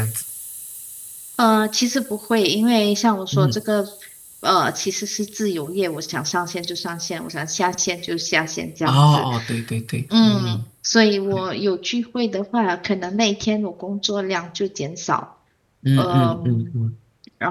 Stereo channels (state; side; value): identical; both; correlation 1.00